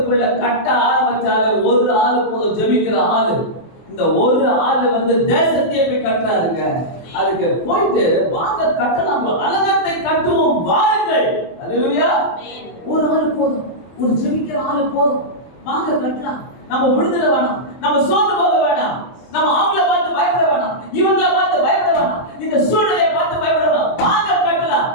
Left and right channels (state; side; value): late; right; 23 ms